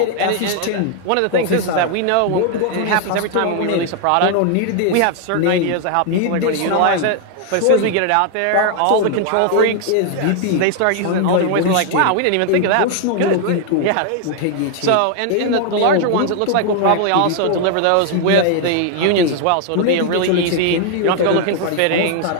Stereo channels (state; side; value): different; both; correlation 0.00